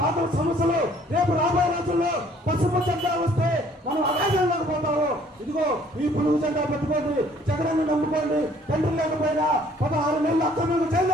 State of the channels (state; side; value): normal; both; correlation 0.59